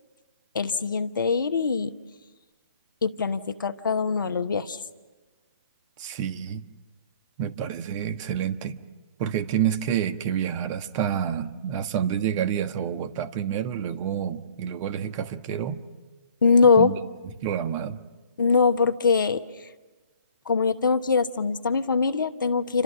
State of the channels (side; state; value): both; inverted; correlation -0.54